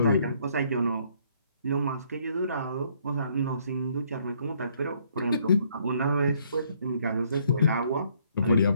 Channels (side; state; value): both; inverted; correlation -0.66